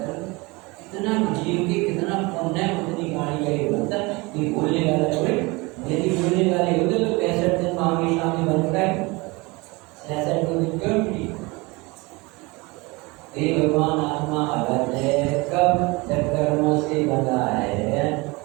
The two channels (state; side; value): quieter; left; 24.9 dB